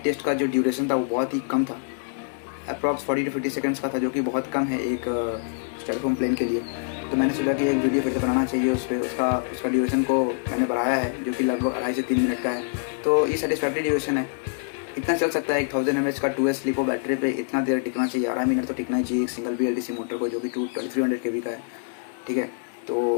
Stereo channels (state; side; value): silent; right; digital silence